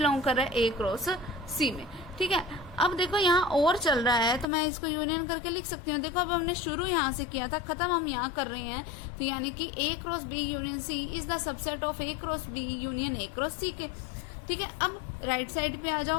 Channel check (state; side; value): drops out; right; at 4.5 s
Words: कर रहा है? A क्रॉस C में। ठीक है, अब देखो यहाँ और चल रहा है तो मैं इसको यूनियन करके लिख सकती हूँ। देखो अब हमने शुरू यहाँ से किया था, खत्म हम यहाँ कर रहे हैं, तो यानी कि A cross B union C is the subset of A cross B union A cross C के। ठीक है, अब राइट साइड पे आ